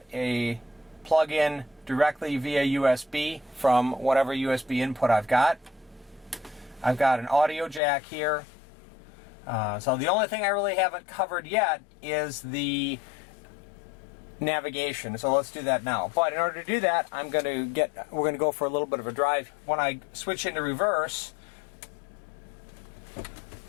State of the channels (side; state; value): right; drops out; at 7.8 s